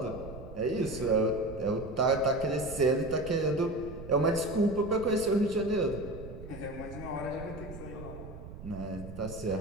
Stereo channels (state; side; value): noise; right; rumble, 12 dB below the sound